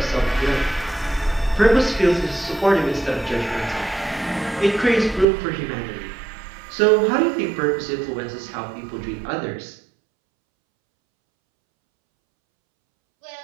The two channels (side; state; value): left; drops out; at 5.2 s